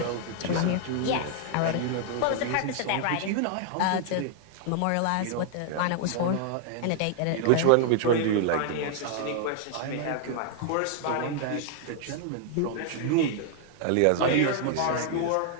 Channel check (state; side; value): different; both; correlation 0.00